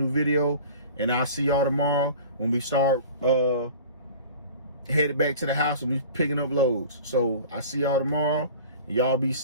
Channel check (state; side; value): inverted; both; correlation -0.42